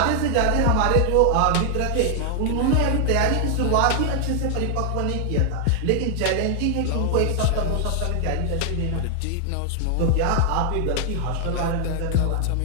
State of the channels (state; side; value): different; both; correlation 0.00